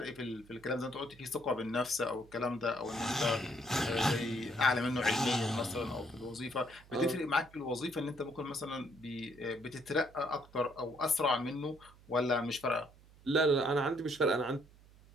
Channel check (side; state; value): right; noise; hum, 24 dB below the sound